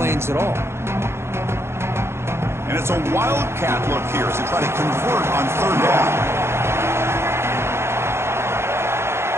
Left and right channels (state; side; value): late; left; 0.12 ms